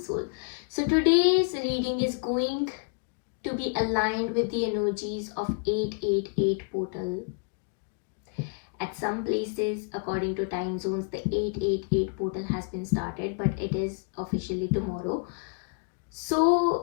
Soul. So today's reading is going to be aligned with the energies of 888 portal. At some places, according to time zones, the 888 portal has been started, but it is officially tomorrow.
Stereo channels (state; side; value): quieter; right; 37.5 dB